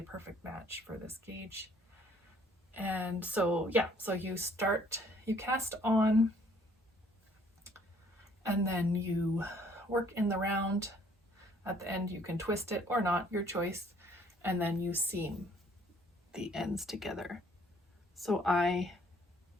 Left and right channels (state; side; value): normal; both; correlation 0.61